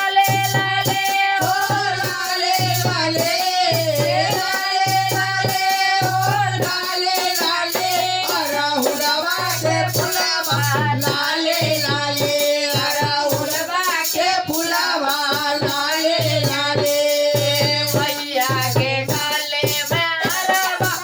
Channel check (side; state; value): both; identical; correlation 1.00